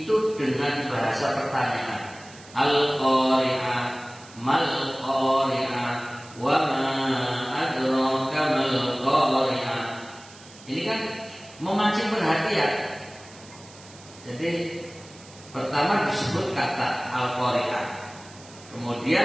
dengan bahasa pertanyaan. Al-Qari'ah, mal Qari'ah, wa ma adraka mal Qari'ah. Ini kan memancing perhatian. Jadi pertama disebut kata Al-Qari'ah,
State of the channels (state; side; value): noise; right; hiss, 21 dB below the sound